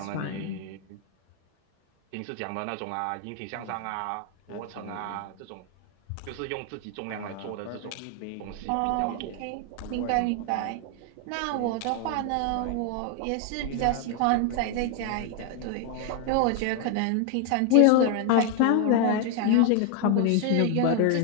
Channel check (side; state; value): both; different; correlation 0.00